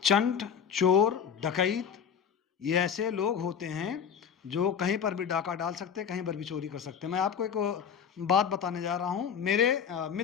चंट, चोर, डकैत ये ऐसे लोग होते हैं जो कहीं पर भी डाका डाल सकते हैं, कहीं पर भी चोरी कर सकते हैं। मैं आपको एक बात बताने जा रहा हूँ, मेरे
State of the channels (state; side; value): quieter; right; 7.5 dB